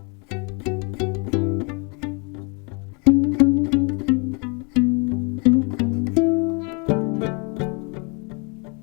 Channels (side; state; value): right; quieter; 33.4 dB